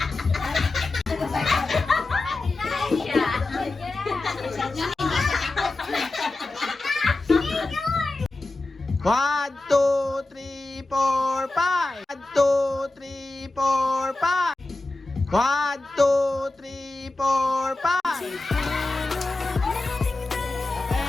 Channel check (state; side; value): quieter; right; 3.0 dB